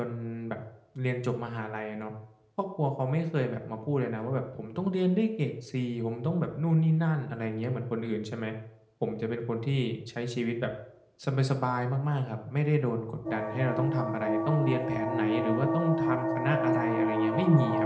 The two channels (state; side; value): identical; both; correlation 1.00